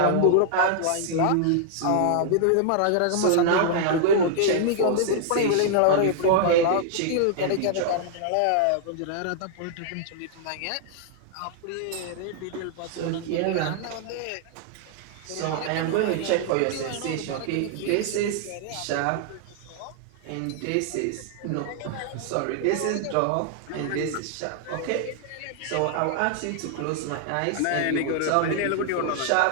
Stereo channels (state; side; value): different; both; correlation -0.01